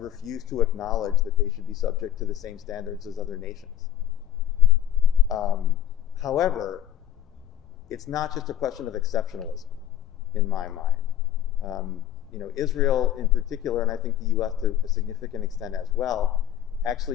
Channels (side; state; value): right; quieter; 11.3 dB